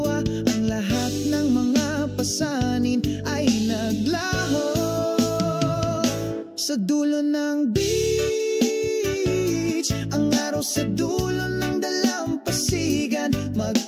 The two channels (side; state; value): both; identical; correlation 1.00